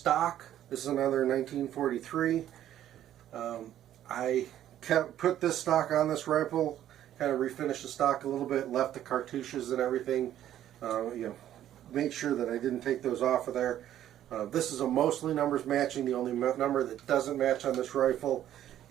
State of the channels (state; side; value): quieter; left; 11.8 dB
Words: This is another 1943. I put this stock on this rifle, kind of refinished the stock a little bit, left the cartouches and everything, made sure that I didn't take those off of there. This is a mostly numbers matching. The only number that doesn't match on this rifle